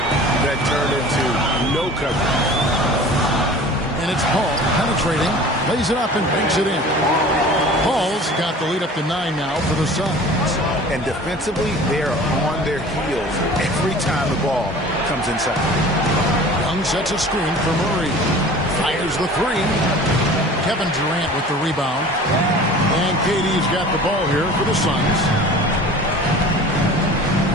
that turned into no coverage. And it's Paul penetrating, lays it up and banks it in. Paul's got the lead up to 9 now for the Suns. And defensively, they are on their heels every time the ball comes inside. Young sets a screen for Murray. Fires the 3. Kevin Durant with the rebound. And KD's got the ball here for the Suns.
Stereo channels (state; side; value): normal; both; correlation 0.43